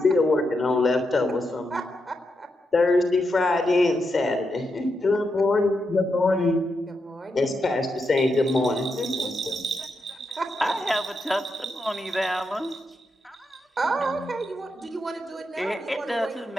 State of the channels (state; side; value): normal; both; correlation 0.84